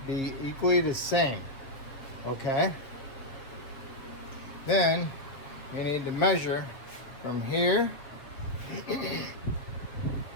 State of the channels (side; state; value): right; late; 8.0 ms